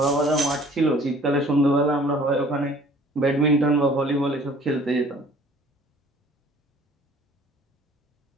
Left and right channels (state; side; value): normal; both; correlation 0.53